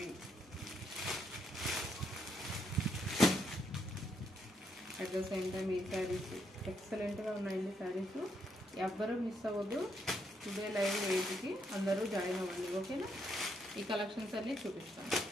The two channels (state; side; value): normal; both; correlation 0.76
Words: అట్ ద సేమ్ టైం ఈ శారీస్ ఎక్సలెంట్గా ఉన్నాయండి శారీస్. ఎవ్వరూ మిస్ అవ్వద్దు. టుడే లైవ్ 8కి అందరూ జాయిన్ అవ్వండి. ఓకేనా, ఈ కలెక్షన్స్ అన్నీ చూపిస్తాను.